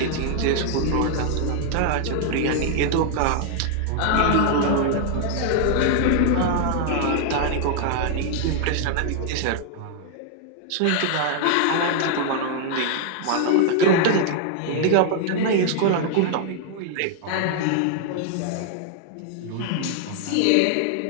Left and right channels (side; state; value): both; different; correlation 0.00